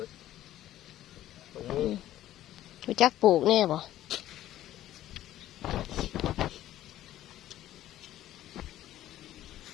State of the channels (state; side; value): quieter; right; 13.4 dB